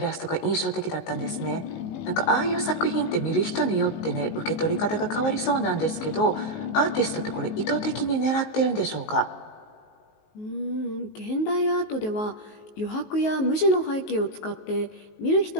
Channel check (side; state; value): right; late; 19 ms